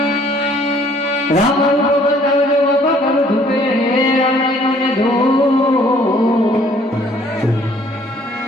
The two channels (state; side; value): normal; both; correlation 0.60